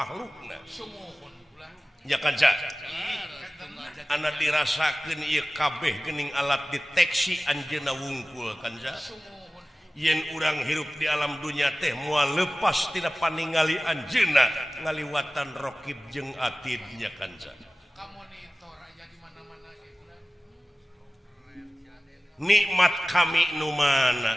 ya kanca ana dirasakeun ieu kabeh geuning alat deteksi anjeunna wungkul kanca yen urang hirup di alam dunya teh moal lepas tina paningali anjeunna ngaliwatan rokib jeung atid nya kanca nikmat kami nu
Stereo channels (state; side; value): normal; both; correlation 0.97